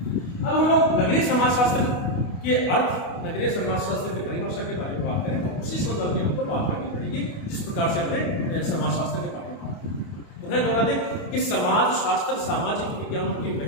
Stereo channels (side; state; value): right; late; 28 ms